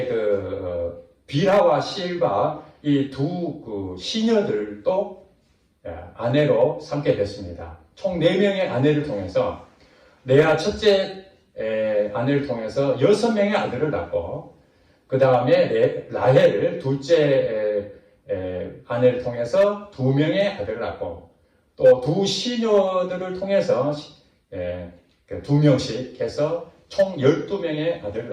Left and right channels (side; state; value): both; identical; correlation 1.00